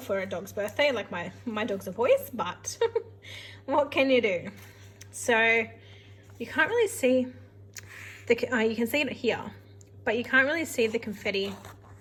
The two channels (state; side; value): identical; both; correlation 1.00